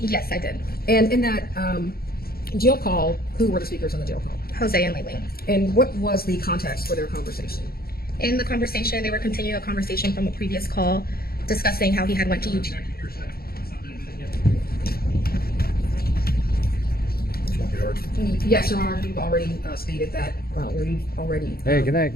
Yes, I did. And in that jail call, who were the speakers on the jail call? Jose and Laken. And what was the context for their conversation? In the conversation, they were continuing a conversation from a previous call, discussing how he had went to UG. Yes, Your Honor, you've already stated that, or you've already Hey, good night,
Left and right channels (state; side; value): late; right; 0.44 ms